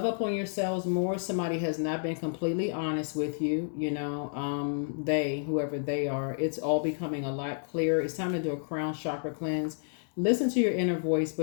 up on yourselves more. Somebody has not been completely honest with you, whoever they are. It's all becoming a lot clearer. It's time to do a crown chakra cleanse. Listen to your inner voice,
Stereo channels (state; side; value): silent; right; digital silence